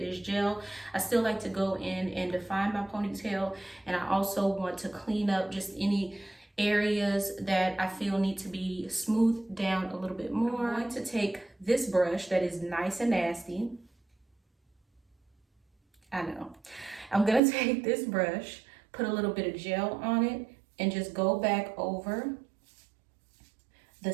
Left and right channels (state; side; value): drops out; left; at 17.4 s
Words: gel, I still like to go in and define my ponytail. And I also want to clean up just any areas that I feel need to be smoothed down a little bit more. I'm going to take this brush that is nice and nasty. I know. I'm gonna take this brush, put a little bit of gel on it, and just go back over the